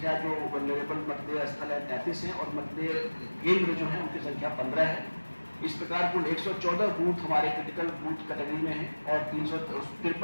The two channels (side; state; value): both; inverted; correlation -1.00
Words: जो वल्नरेबल मतदेय स्थल है 33 है और मतदेय केंद्र जो है उनकी संख्या 15 है। इस प्रकार कुल 114 बूथ हमारे क्रिटिकल बूथ कैटेगरी में है और